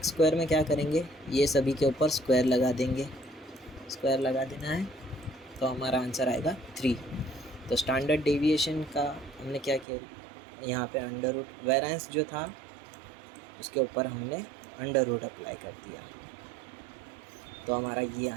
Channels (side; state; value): left; drops out; at 9.9 s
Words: स्क्वायर में क्या करेंगे, ये सभी के ऊपर स्क्वायर लगा देंगे, स्क्वायर लगा देना है, तो हमारा आंसर आएगा 3। तो स्टैंडर्ड डेविएशन का हमने क्या किया, यहाँ पे अंडर रूट, वेरिएंस जो था उसके ऊपर हमने अंडर रूट अप्लाई कर दिया, तो हमारा ये